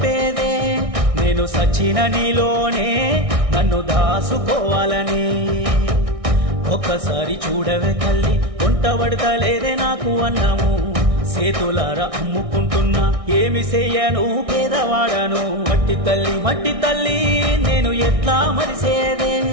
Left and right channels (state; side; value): late; left; 1.6 ms